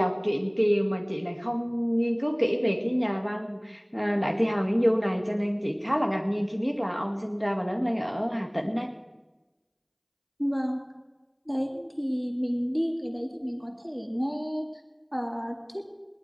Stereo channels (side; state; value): both; identical; correlation 1.00